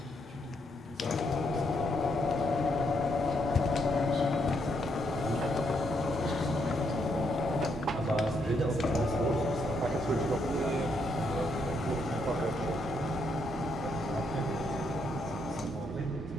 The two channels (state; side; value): normal; both; correlation 0.76